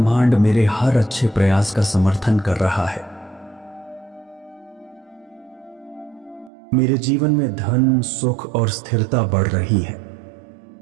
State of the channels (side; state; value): left; drops out; at 6.5 s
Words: मेरे हर अच्छे प्रयास का समर्थन कर रहा है। मेरे जीवन में धन, सुख और स्थिरता बढ़ रही है।